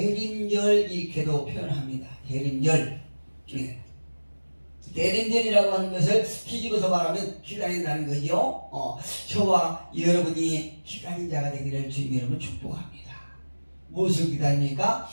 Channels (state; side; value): inverted; both; correlation -1.00